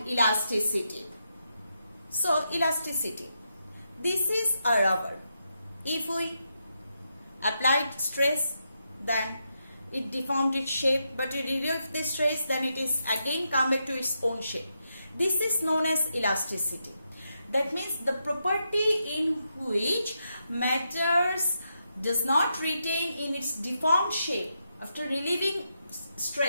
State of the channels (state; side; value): inverted; both; correlation -0.84